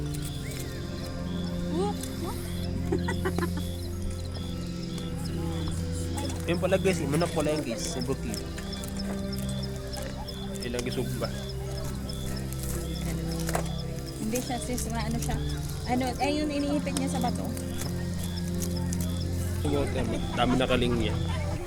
Yung pala guys, manok pala yung guys. Subuki. Ilang gisugba. Hindi siya sis. Ano siya? Ano, ay yung iniipit niya sa bato. Dami na kalingya.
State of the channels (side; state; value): both; identical; correlation 1.00